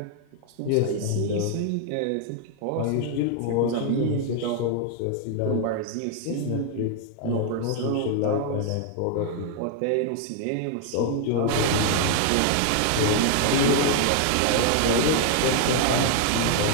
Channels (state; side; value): different; both; correlation 0.00